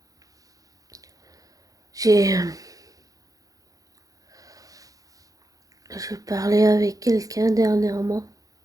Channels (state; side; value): late; left; 0.17 ms